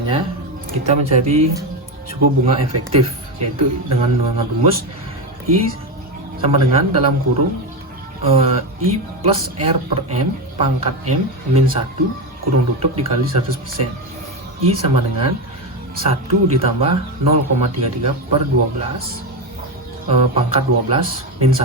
kita mencari suku bunga efektif, yaitu dengan rumus I sama dengan dalam kurung I plus R per M pangkat M min 1 kurung tutup dikali 100%. I sama dengan 1 ditambah 0,33 per 12 pangkat 12 min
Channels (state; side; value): normal; both; correlation 0.14